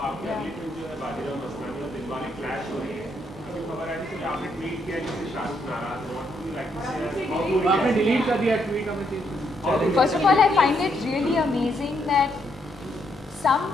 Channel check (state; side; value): normal; both; correlation 0.75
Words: आपकी अगली फिल्म जो है बाजीराव मस्तानी और दिलवाले क्लैश हो रही है, अभी खबर आई थी कि आपने ट्वीट किया जिससे शाहरुख नाराज है। आपने डिलीट कर दिया ट्वीट, हमें चीज। First of all, I find it really amazing that some